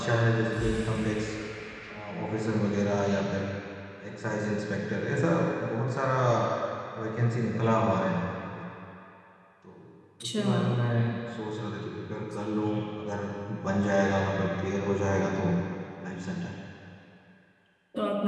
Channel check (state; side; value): identical; both; correlation 1.00